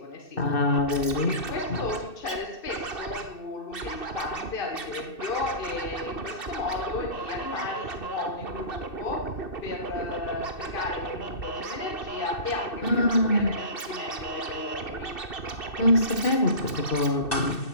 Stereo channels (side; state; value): right; late; 2.6 ms